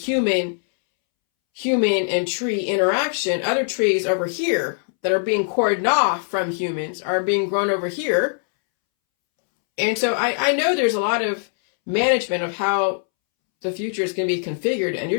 and tree interaction, other trees over here that are being cordoned off from humans are being grown over here. And so I know there's a lot of management of how the future is going to be configured, and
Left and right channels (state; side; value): silent; right; 65 dB below the other